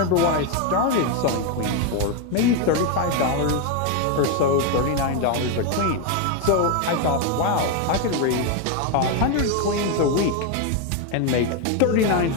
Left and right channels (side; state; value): both; different; correlation 0.02